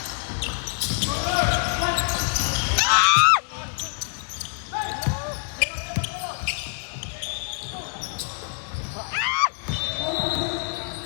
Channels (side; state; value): right; silent; 59 dB below the other